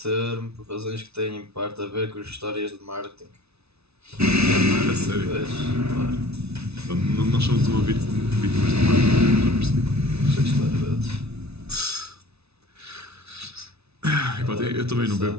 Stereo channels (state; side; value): late; left; 0.80 ms